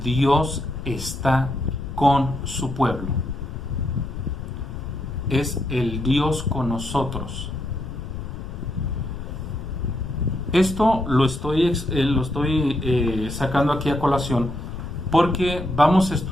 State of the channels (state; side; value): noise; left; rumble, 8 dB below the sound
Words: Dios está con su pueblo. Es el Dios con nosotros. Esto lo estoy sacando aquí a colación porque vamos a